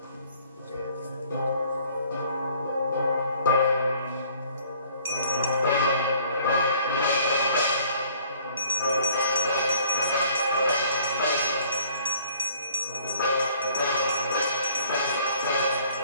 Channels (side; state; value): both; inverted; correlation -0.57